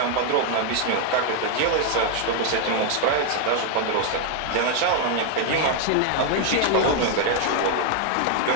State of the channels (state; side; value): different; both; correlation 0.01